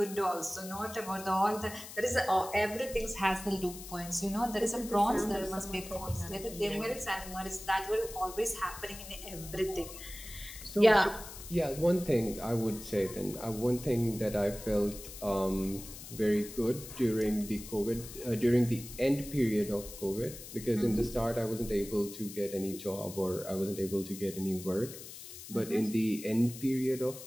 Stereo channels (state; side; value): noise; left; hiss, 13 dB below the sound